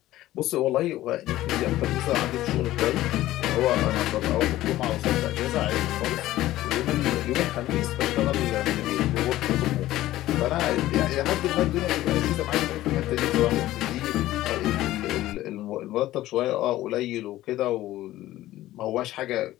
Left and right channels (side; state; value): right; quieter; 15.3 dB